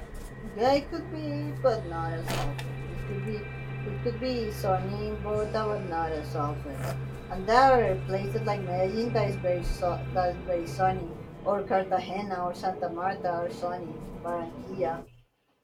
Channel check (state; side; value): identical; both; correlation 1.00